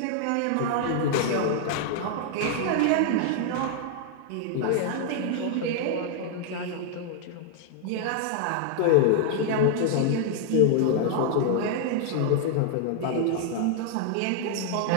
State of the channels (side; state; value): both; different; correlation 0.00